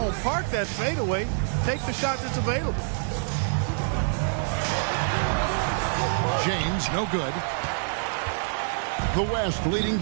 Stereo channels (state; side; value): silent; left; digital silence